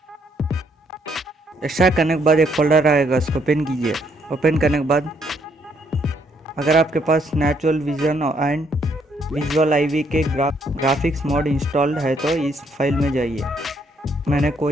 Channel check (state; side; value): normal; both; correlation 0.71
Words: एक्सट्रैक्ट करने के बाद एक फोल्डर आएगा, उसको ओपन कीजिए। ओपन करने के बाद अगर आपके पास natural vision and visual IV के ग्राफिक्स मोड इंस्टॉल्ड है तो इस फाइल में जाइए। मैंने